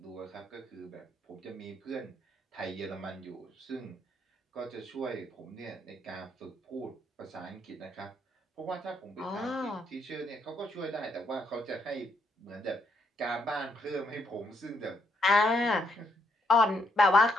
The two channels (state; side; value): normal; both; correlation 0.74